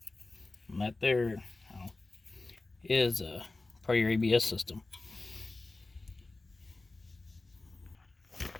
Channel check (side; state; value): right; quieter; 3.2 dB